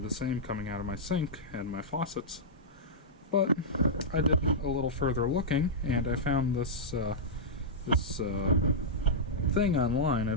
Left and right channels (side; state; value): both; normal; correlation -0.11